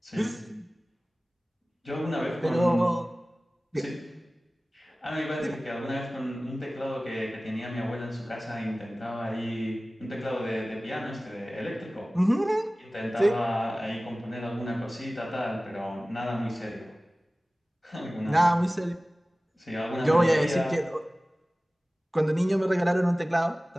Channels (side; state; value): both; normal; correlation 0.97